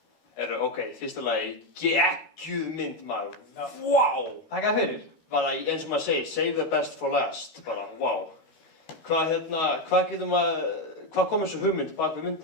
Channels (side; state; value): right; late; 13 ms